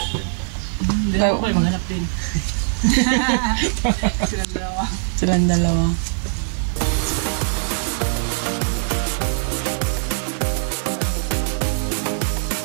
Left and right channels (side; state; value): left; silent; digital silence